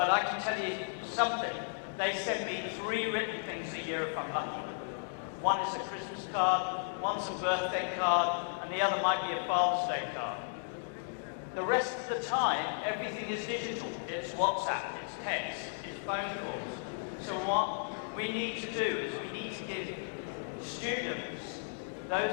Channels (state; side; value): silent; right; digital silence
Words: I can tell you something. They send me 3 written things a year from London. One is a Christmas card, one's a birthday card, and the other might be a Father's Day card. The rest of the time, everything is digital. It's WhatsApp, it's text, it's phone calls. So what we need to do is we need to give students,